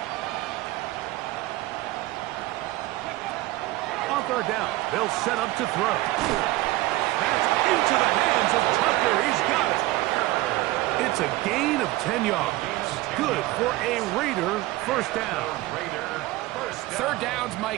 On third down, they'll set up to throw. That's into the hands of Tucker. He's got it. It's a gain of 10 yards. Good for a Raider first down. Third downs,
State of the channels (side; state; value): left; quieter; 18.1 dB